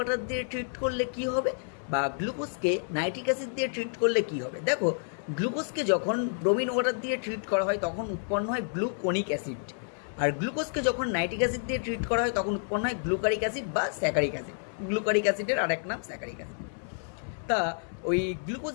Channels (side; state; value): right; silent; 58 dB below the other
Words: দিয়ে ট্রিট করলে কি হবে, বা গ্লুকোজকে নাইট্রিক অ্যাসিড দিয়ে ট্রিট করলে কি হবে। দেখো, গ্লুকোজকে যখন ব্রোমিন ওয়াটার দিয়ে ট্রিট করা হয় তখন উৎপন্ন হয় গ্লুকোনিক অ্যাসিড, আর গ্লুকোজকে যখন নাইট্রিক অ্যাসিড দিয়ে ট্রিট করা হয় তখন উৎপন্ন হয় গ্লুকারিক অ্যাসিড বা স্যাকারিক অ্যাসিড। গ্লুকারিক অ্যাসিডের আরেক নাম স্যাকারিক অ্যাসিড। তা ওই